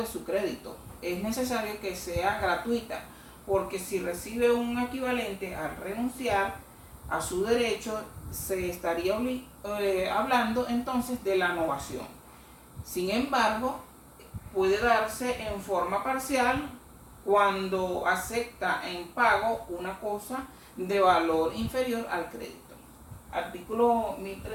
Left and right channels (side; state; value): both; identical; correlation 1.00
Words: su crédito. Es necesario que sea gratuita, porque si recibe un equivalente al renunciar a su derecho, se estaría hablando entonces de la novación. Sin embargo, puede darse en forma parcial cuando acepta en pago una cosa de valor inferior al crédito. Artículo